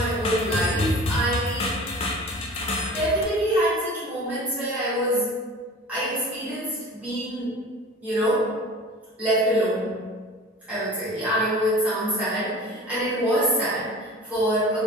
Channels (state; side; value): normal; both; correlation 0.40